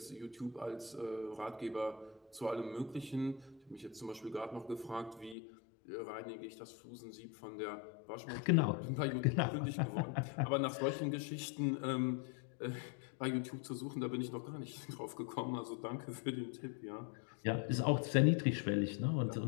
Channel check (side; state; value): right; drops out; at 5.4 s